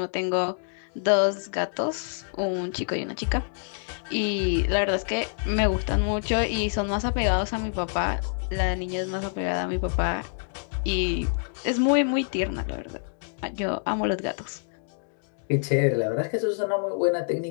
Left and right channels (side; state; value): right; silent; digital silence